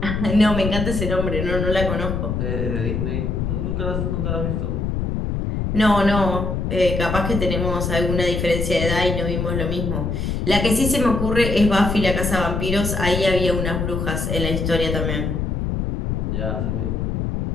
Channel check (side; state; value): left; noise; rumble, 1 dB below the sound